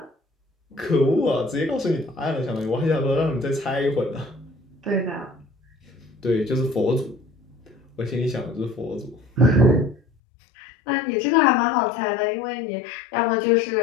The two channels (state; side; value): drops out; right; at 10.0 s